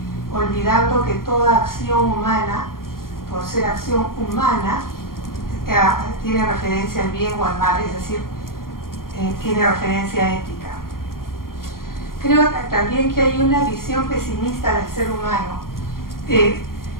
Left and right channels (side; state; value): right; late; 0.91 ms